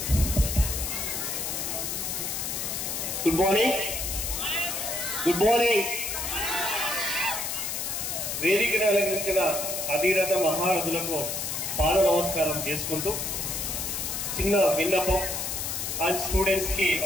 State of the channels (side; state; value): left; noise; hiss, 3 dB below the sound